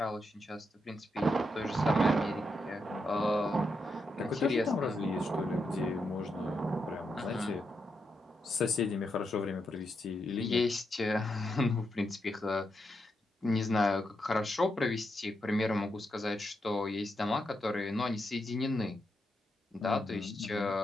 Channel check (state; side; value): normal; both; correlation 0.83